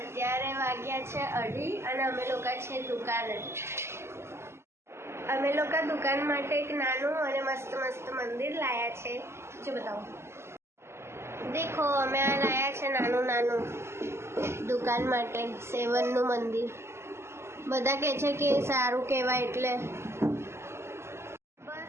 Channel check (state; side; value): late; left; 0.13 ms